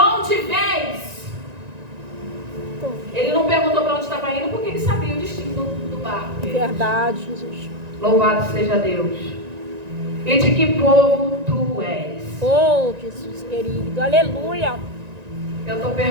vens? Ele não perguntou para onde estava indo, porque ele sabia o destino do barco. Verdade, Jesus. Louvado seja Deus. E de que povo tu és? Oh, Jesus querido. Aleluia. Eu estou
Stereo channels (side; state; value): left; late; 1.9 ms